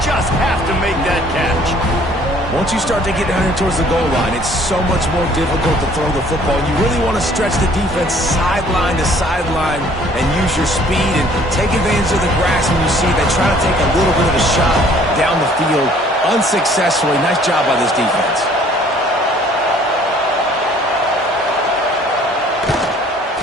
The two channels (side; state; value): both; normal; correlation 0.57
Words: just have to make that catch. Once you start to get down here towards the goal line, it's so much more difficult to throw the football. You really want to stretch the defense sideline to sideline and use your speed and take advantage of the grass when you see they try to take a little bit of a shot down the field unsuccessfully. Nice job by this defense.